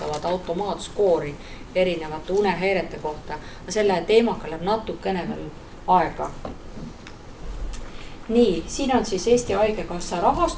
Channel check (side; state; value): both; identical; correlation 1.00